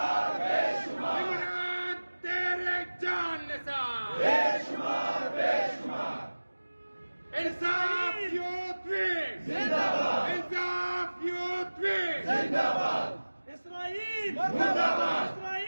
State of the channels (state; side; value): inverted; both; correlation -1.00